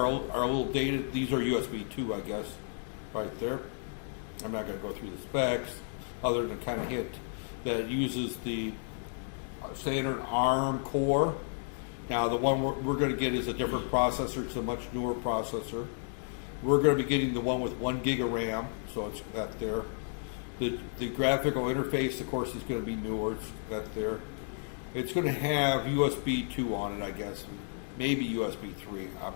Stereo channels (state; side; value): silent; right; 56 dB below the other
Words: a little dated. These are USB 2, I guess, right there. I'm not going to go through the specs other than kind of hint that it uses the standard ARM core. Now, the one we're going to get is a different processor. It's a much newer processor. We're going to be getting the one with 1 gig of RAM, so it's that there. The graphical interface, of course, is going to be newer. It's that there. It's going to have USB 2 on it, I guess. Maybe USB 3. I'm